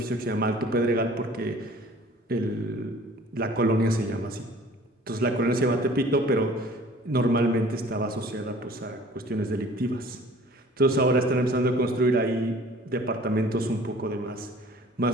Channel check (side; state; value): both; normal; correlation 0.49